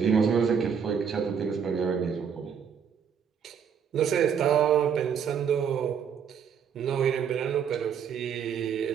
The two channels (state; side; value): quieter; left; 7.4 dB